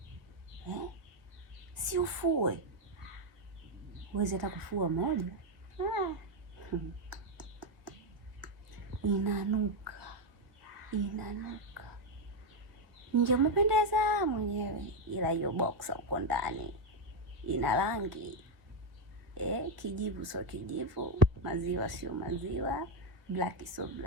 Si ufue. Uwezi hata kufua moja. Inanuka. Ningempendeza mwenyewe, ila hiyo boxer uko ndani ina rangi kijivu sio kijivu, maziwa sio maziwa, black sio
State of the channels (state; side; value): late; left; 1.5 ms